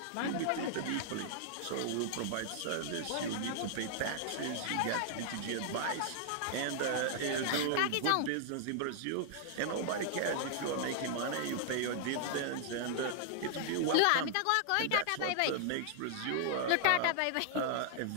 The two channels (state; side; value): different; both; correlation -0.01